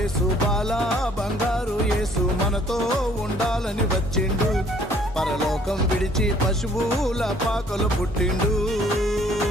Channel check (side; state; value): both; normal; correlation 0.59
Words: బాల బంగారు యేసు మనతో ఉండాలని వచ్చిండు. పరలోకం విడిచి పశువుల పాకలు పుట్టిండు.